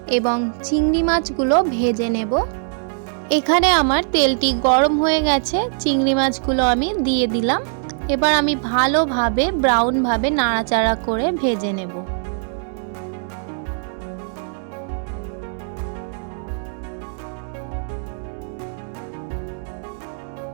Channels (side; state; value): left; silent; digital silence